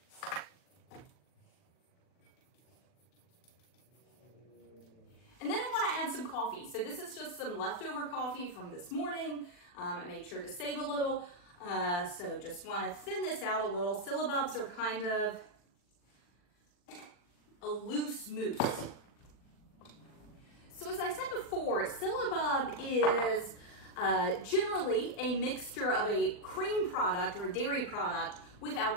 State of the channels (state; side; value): late; right; 40 ms